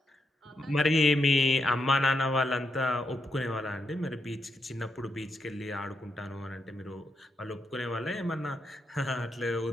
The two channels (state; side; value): normal; both; correlation 0.81